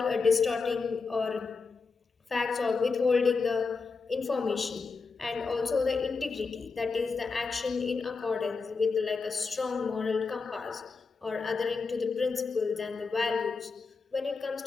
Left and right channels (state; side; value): quieter; right; 4.6 dB